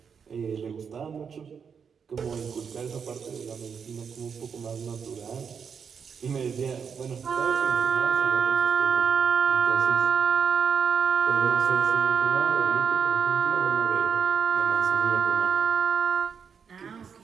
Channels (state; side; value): quieter; left; 6.6 dB